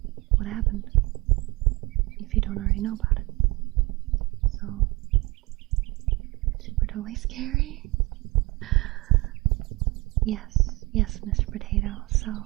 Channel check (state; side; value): quieter; left; 23.5 dB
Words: what happened if you don't already know about it. So, super totally scary. Yes, Mr. Potato, so